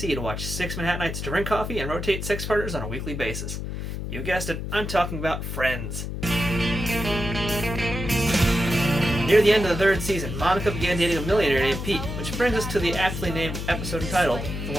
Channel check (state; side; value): noise; left; hum, 5 dB below the sound